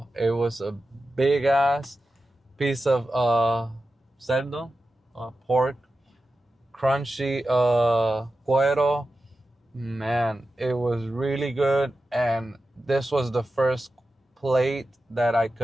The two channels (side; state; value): both; normal; correlation 0.92